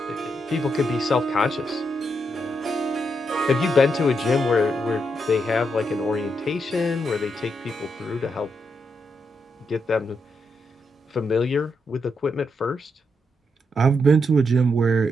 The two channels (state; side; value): normal; both; correlation 0.81